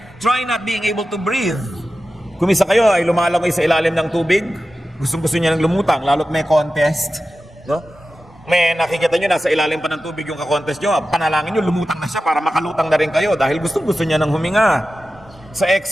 Try not being able to breathe. Kung isa kayo ay lumalangoy sa ilalim ng tubig, gustong-gusto niya ng lumutang, lalo't may contest. No? May nakikita nyo, nasa ilalim pa ng tubig yung kakontest nyo, panalangin nyo, lumutang na siya para makalutang na rin kayo dahil gustong-gusto niya ng huminga. Sa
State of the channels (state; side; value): normal; both; correlation 0.93